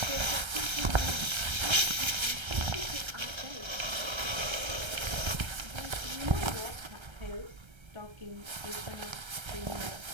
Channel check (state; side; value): late; left; 1.3 ms